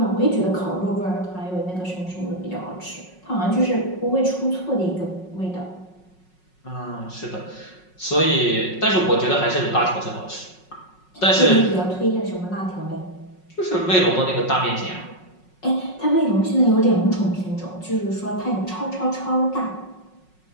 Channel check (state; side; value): late; right; 5.5 ms